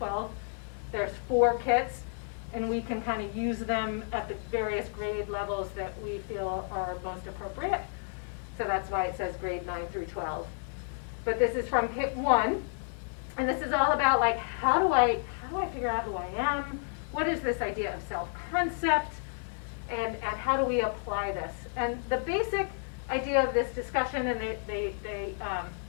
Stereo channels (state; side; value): silent; right; 57 dB below the other